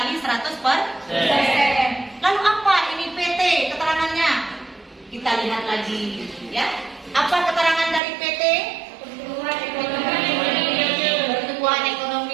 100%. Lalu apa ini PT keterangannya? Kita lihat lagi ya. Apa keterangan dari PT? Pertumbuhan ekonomi. Pertumbuhan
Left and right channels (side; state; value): left; drops out; at 8.0 s